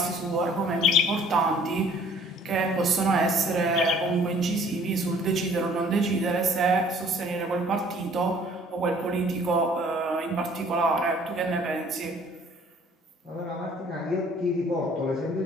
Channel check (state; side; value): normal; both; correlation 0.55